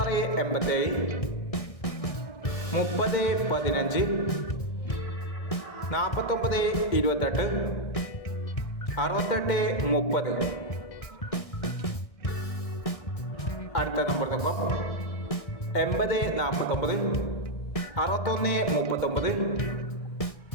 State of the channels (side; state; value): right; late; 1.6 ms